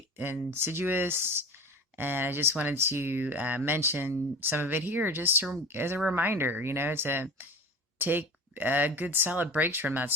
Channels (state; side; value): normal; both; correlation 0.35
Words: insidious. And I just wanted to mention some of it here just as a reminder, to take good solid breaks from that